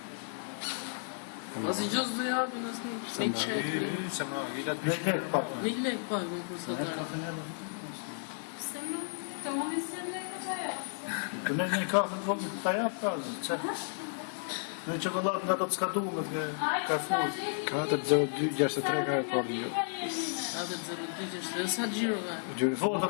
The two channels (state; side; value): silent; right; digital silence